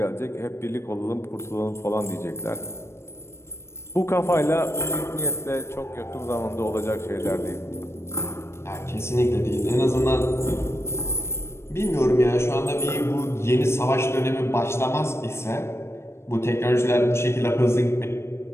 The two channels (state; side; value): late; right; 0.13 ms